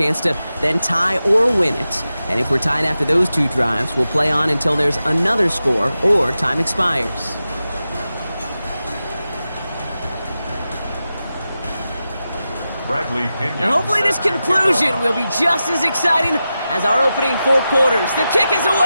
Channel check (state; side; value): inverted; both; correlation -0.92